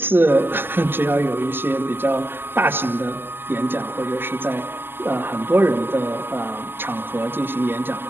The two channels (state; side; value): late; left; 0.10 ms